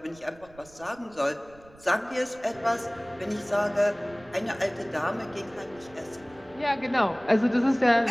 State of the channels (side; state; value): right; noise; rumble, 25 dB below the sound